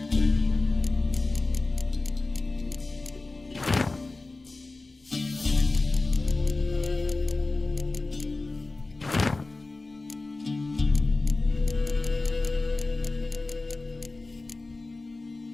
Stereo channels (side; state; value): right; quieter; 3.3 dB